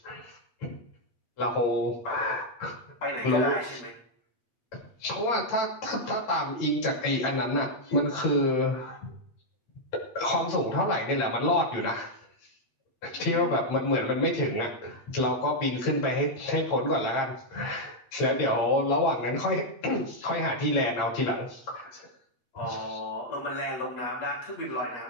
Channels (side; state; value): right; late; 8.5 ms